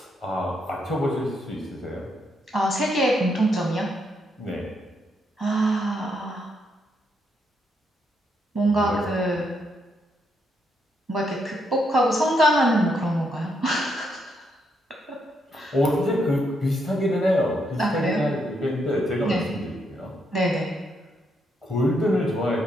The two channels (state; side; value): normal; both; correlation 0.78